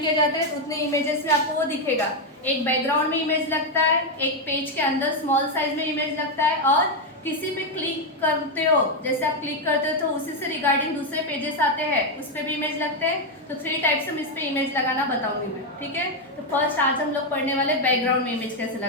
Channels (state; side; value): normal; both; correlation 0.03